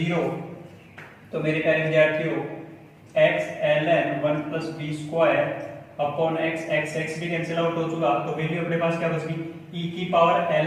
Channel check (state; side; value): identical; both; correlation 1.00